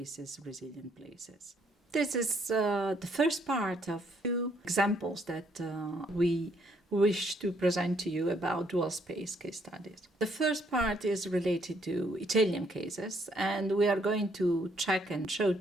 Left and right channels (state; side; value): normal; both; correlation 0.69